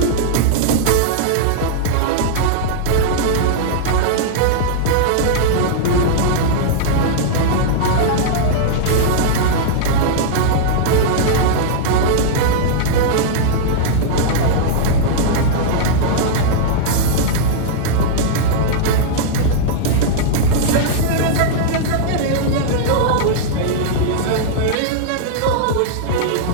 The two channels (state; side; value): different; both; correlation -0.02